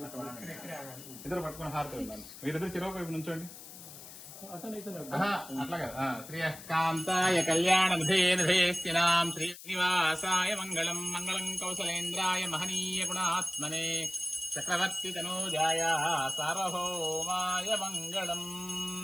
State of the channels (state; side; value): noise; left; hiss, 15 dB below the sound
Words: ఇద్దరు పట్టుకుని హారతి వెళ్ళాలి. మీరిద్దరు చిరవ వైపు నుంచోండి. అట్లా కదా. శ్రీకాంతాయ కళ్యాణనిధేనిధేస్తినాం శ్రీనివాసాయ మంగళం మంగళం కౌసలేంద్రాయ మహనీయ గుణాత్మనే చక్రవర్తి తనూజాయ సార్వభౌమాయ మంగళం.